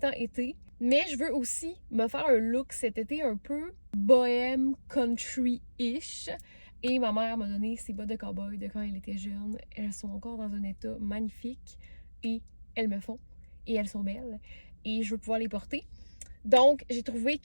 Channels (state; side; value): inverted; both; correlation -1.00